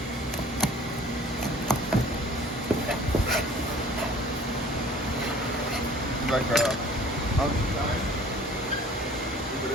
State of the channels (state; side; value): normal; both; correlation 0.49